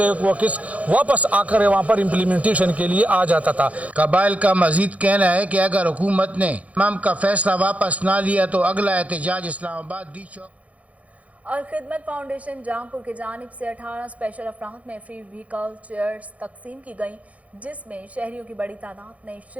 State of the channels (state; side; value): late; left; 0.067 ms